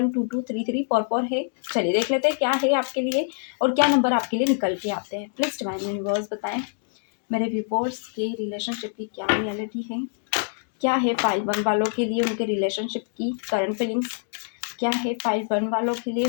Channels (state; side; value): silent; right; digital silence